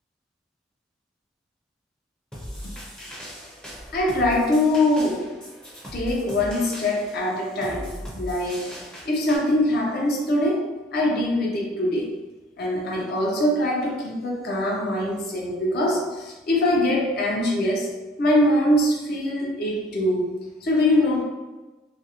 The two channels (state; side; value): normal; both; correlation 0.52